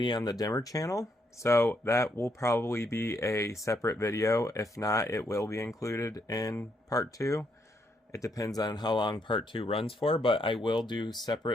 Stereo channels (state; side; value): normal; both; correlation 0.75